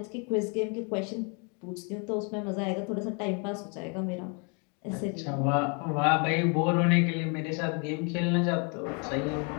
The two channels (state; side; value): quieter; right; 35.8 dB